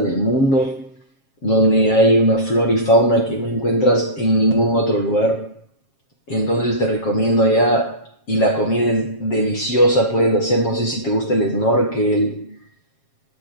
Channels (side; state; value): right; late; 7.4 ms